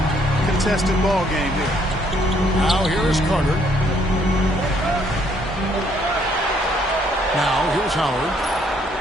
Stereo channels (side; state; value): both; normal; correlation 0.67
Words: contested ball game here. Now here is Carter. Now here's Howard.